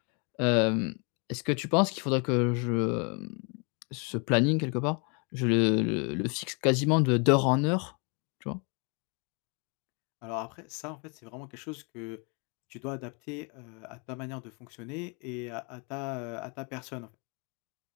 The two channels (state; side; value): quieter; right; 35.0 dB